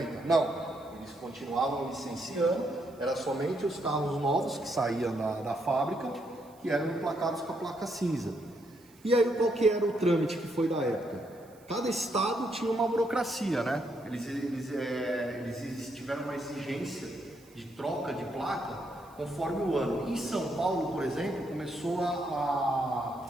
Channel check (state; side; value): noise; right; hiss, 28 dB below the sound